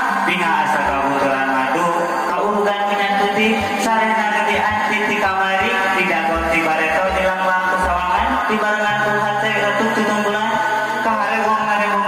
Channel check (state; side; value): identical; both; correlation 1.00